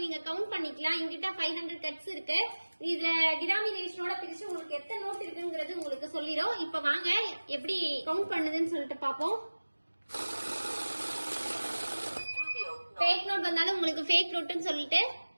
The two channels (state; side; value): inverted; both; correlation -1.00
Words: நீங்க கவுண்ட் பண்ணிக்கலாம். எங்கிட்ட 500 கட்ஸ் இருக்கு. இதுல டினாமினேஷனோட பிரிச்சு உங்களுக்கு எத்தனை நோட் இருக்குங்கிறது உங்களுக்கு சொல்லிடும். இப்ப வாங்க எப்படி கவுண்ட் பண்ணுதுன்னு சொல்லிட்டு பாப்போம். ஃபேக் நோட் வந்தாலும் உங்களுக்கு ஃபேக் நோட்னு சொல்லிட்டு